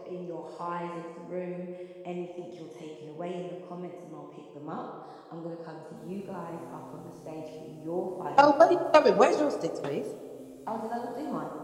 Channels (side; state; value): both; identical; correlation 1.00